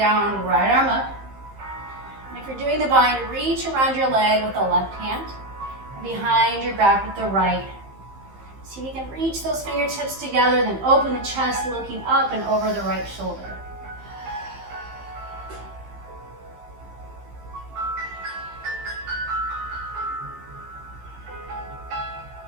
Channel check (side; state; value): left; late; 15 ms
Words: right arm up. And if you're doing the bind, reach around your leg with the left hand and behind your back with the right. See if you can reach those fingertips together, then open the chest, looking up and over the right shoulder.